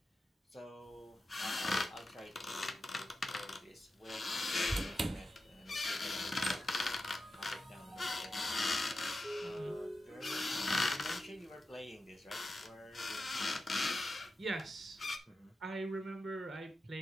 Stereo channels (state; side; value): normal; both; correlation 0.91